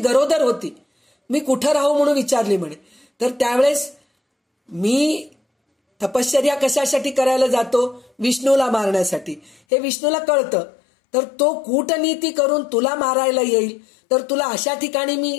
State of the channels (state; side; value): drops out; right; at 9.6 s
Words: होती. मी कुठं राहू म्हणून विचारली म्हणे. तर त्यावेळेस मी तपश्चर्या कशासाठी करायला जातो? विष्णूला मारण्यासाठी. हे विष्णूला कळतं. तर तो कूटनीती करून तुला मारायला येईल, तर तुला अशा ठिकाणी